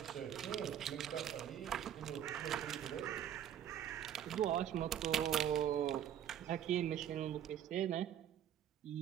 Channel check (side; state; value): left; quieter; 10.1 dB